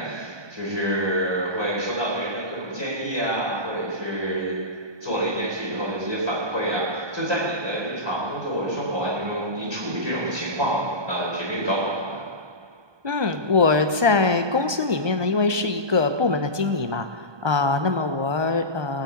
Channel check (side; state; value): left; late; 1.2 ms